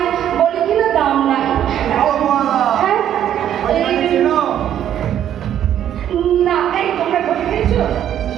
বলে কিনা দাম নাই। হ্যাঁ, না, এই তোমরা ভোল খেয়েছো?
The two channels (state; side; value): quieter; left; 10.5 dB